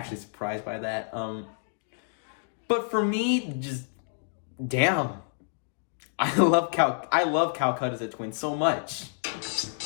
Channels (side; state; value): right; silent; digital silence